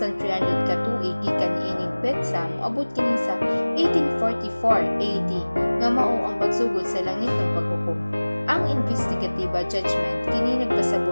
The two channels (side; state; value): both; inverted; correlation -1.00